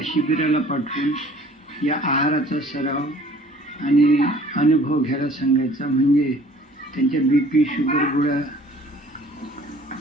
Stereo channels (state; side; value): normal; both; correlation 0.52